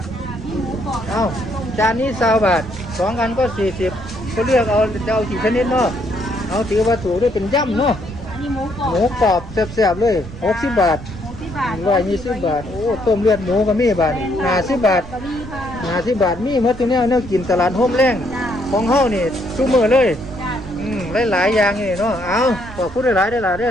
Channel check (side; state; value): right; noise; rumble, 15 dB below the sound